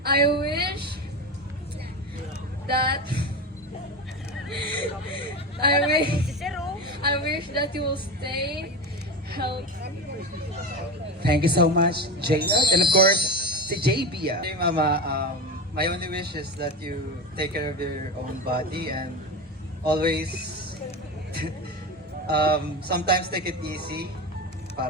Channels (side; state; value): both; normal; correlation 0.22